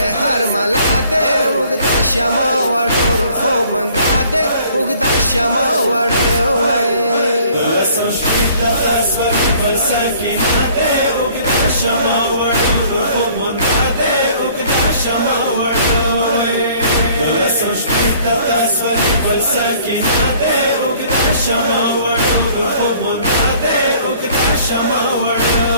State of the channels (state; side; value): inverted; both; correlation -0.56